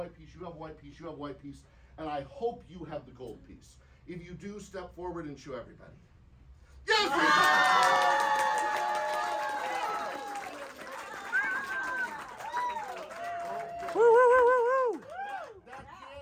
piece, you have a white piece, you have a white piece, and I hope you have the gold piece. If you do, step forward and show everybody. Yes! That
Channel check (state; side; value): identical; both; correlation 1.00